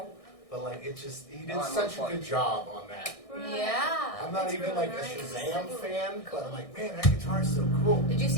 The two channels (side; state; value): right; late; 1.6 ms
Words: but like it just he did Oh, I'm such a on good job on that. Yeah. I'm not It's even really like nice. a Shazam fan, but I'm like, man, that guitar's so cool. Did you